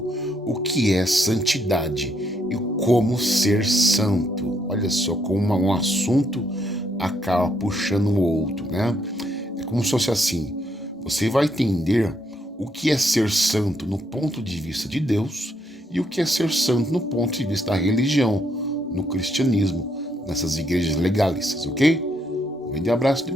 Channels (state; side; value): normal; both; correlation 0.74